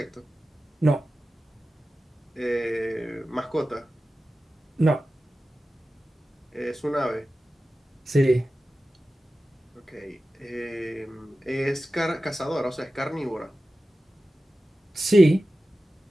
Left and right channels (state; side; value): normal; both; correlation 0.94